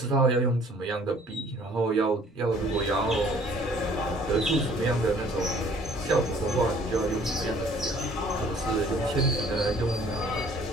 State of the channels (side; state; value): both; normal; correlation 0.56